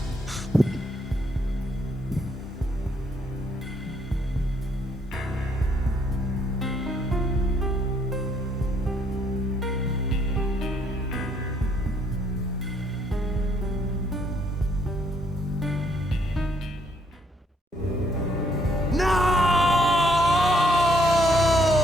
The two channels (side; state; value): both; normal; correlation 0.69